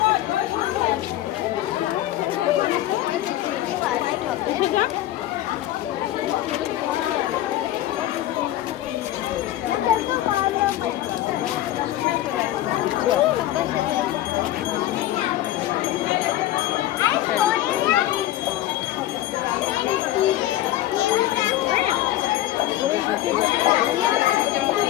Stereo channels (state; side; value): quieter; right; 14.1 dB